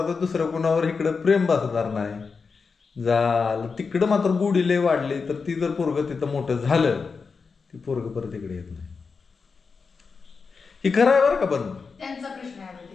दुसरं कुणावर इकडं प्रेम बसणार नाही. झालं तिकडं मात्र गोडी लय वाढली तर ती जर पोरगं तिथं मोठं झालं ती पोरगं परत इकडे येत नाही. ही खरं आहे बरं का. पण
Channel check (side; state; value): right; quieter; 5.0 dB